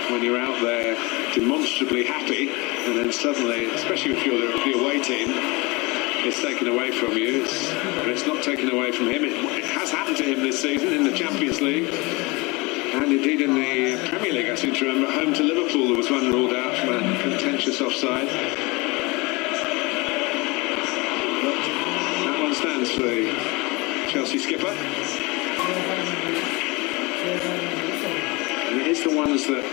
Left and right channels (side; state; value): right; quieter; 25.5 dB